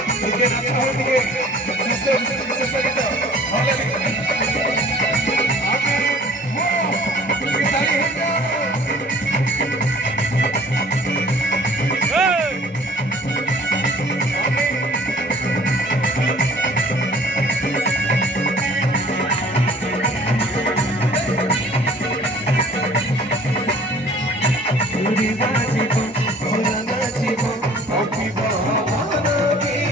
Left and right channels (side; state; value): both; normal; correlation 0.51